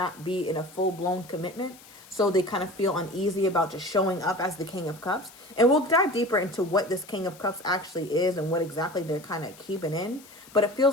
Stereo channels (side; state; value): left; noise; hiss, 22 dB below the sound